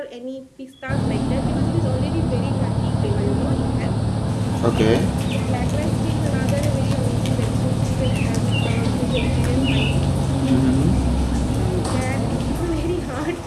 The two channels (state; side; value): identical; both; correlation 1.00